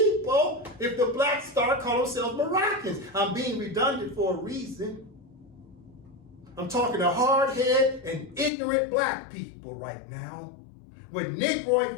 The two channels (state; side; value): drops out; right; at 8.5 s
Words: if the blacks start calling themselves Moroccans. I'm being redundant for a reason. I'm talking to hard-headed and ignorant black people right now with